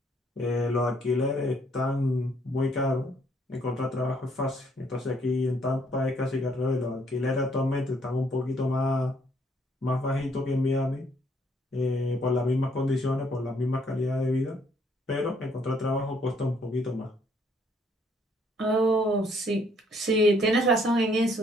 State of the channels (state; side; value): normal; both; correlation 0.67